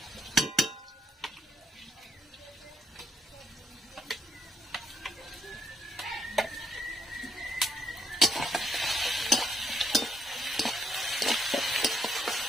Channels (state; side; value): normal; both; correlation 0.75